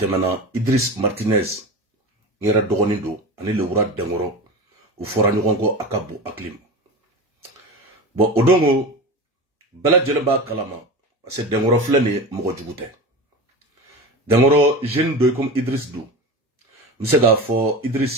Idris Martinez ngera dogonindo ani le Ura Dengoro ufora nyongo akabu aklim bo odongo bela jelemba kalama parce Dengoro flene mogo jugute Dengoro jeune doy comme Idris do Msega fo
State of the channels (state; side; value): normal; both; correlation 0.28